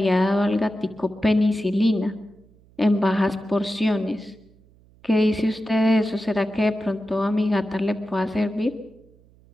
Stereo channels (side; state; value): right; noise; hum, 29 dB below the sound